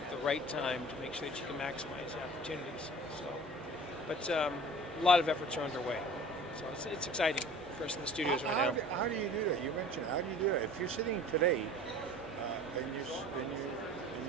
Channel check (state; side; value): normal; both; correlation 0.44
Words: at the right time to make sure that you can maximize the opportunities. So, but a lot of efforts are underway. So it's exciting for us in the studios right now. How do you do that? You mentioned how do you do that? If you're sitting today and you